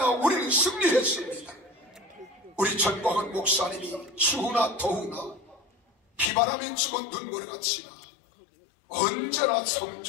우리는 승리했습니다. 우리 전광훈 목사님이 추우나 더우나 비바람이 치고 눈보라가 치나 언제나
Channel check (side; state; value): right; drops out; at 6.3 s